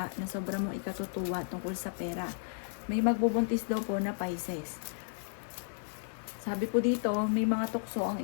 na sobrang mong ikatutuwa tungkol sa pera. May magbubuntis daw po na Pisces. Sabi po dito, may mga tukso ang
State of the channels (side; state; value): right; silent; 55 dB below the other